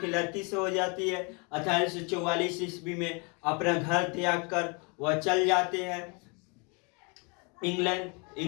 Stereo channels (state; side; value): quieter; right; 32.6 dB